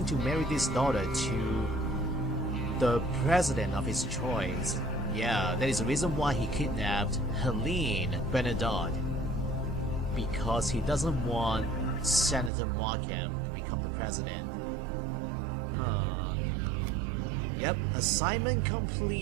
to marry this daughter to the president of his choice. Yeah, that is the reason why he kidnapped Helene Bernadotte. Because he doesn't want Senator Markham to become the president. Huh. Yep, assignment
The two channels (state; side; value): drops out; left; at 12.5 s